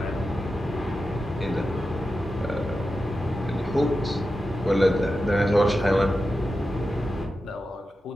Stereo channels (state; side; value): normal; both; correlation 0.91